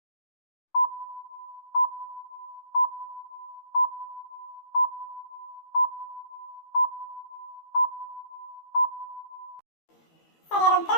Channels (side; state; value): right; late; 12 ms